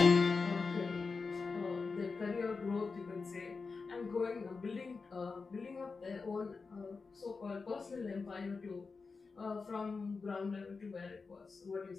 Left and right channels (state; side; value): quieter; right; 4.5 dB